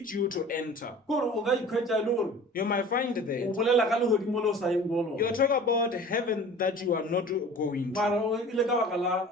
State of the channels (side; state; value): both; normal; correlation 0.43